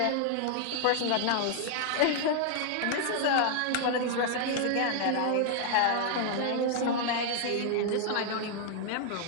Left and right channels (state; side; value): different; both; correlation 0.00